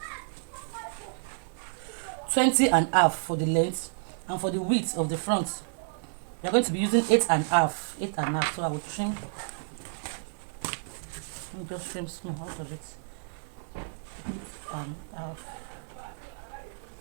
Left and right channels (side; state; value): left; silent; 58 dB below the other